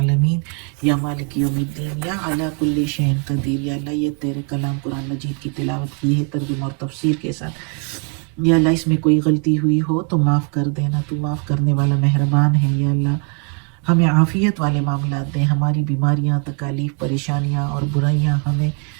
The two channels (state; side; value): quieter; left; 39.3 dB